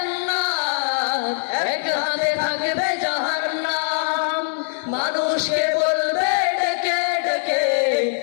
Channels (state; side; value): silent; right; 58 dB below the other